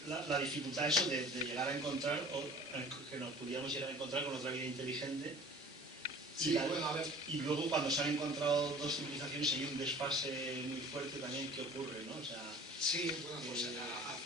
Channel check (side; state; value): both; normal; correlation 0.46